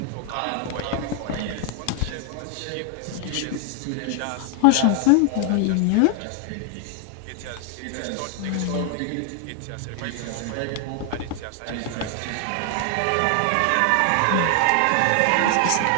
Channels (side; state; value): both; different; correlation 0.00